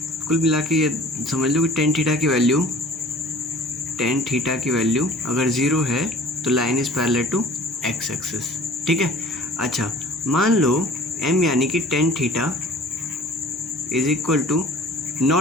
कुल मिला के ये समझ लो कि टेन थीटा की वैल्यू अगर 0 है तो line is parallel to X axis. ठीक है, अच्छा मान लो m यानी कि tan theta is equal to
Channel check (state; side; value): normal; both; correlation 0.47